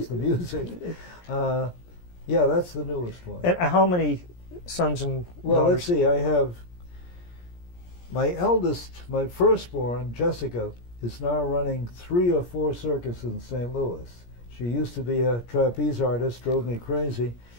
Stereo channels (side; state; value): right; late; 17 ms